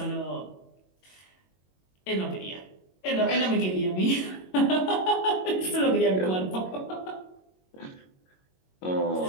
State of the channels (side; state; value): right; late; 22 ms